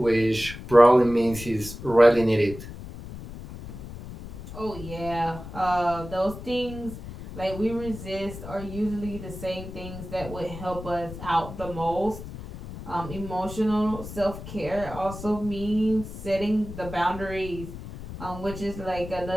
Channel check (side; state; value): left; noise; rumble, 12 dB below the sound